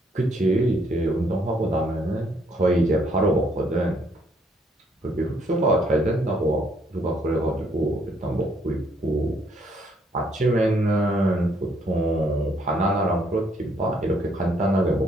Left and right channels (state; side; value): normal; both; correlation 0.69